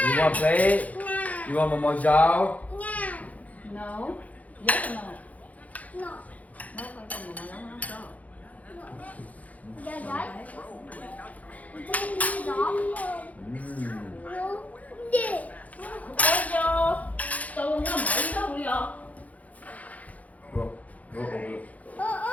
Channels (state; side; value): late; right; 0.072 ms